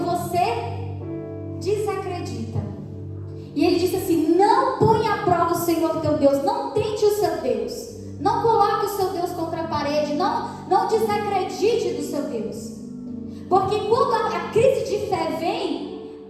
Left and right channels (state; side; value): identical; both; correlation 1.00